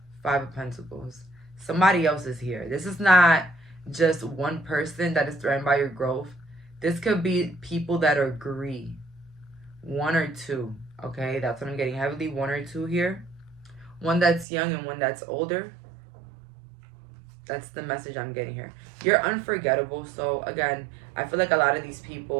5 of Pentacles. Somebody else is here. This is not just one person that is threatened by your growth. This could be people that agree. 1 or 2. Okay, that's what I'm getting. Heavily 1 or 2 here. One that's young and one that's older. That's the message I'm getting here. You're unforgettable. So again, I feel like a lot of these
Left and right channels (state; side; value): drops out; left; at 14.5 s